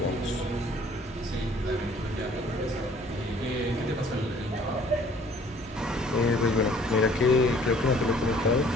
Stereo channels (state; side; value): normal; both; correlation 0.55